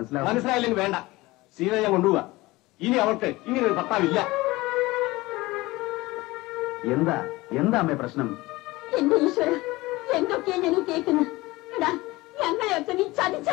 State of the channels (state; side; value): quieter; right; 20.4 dB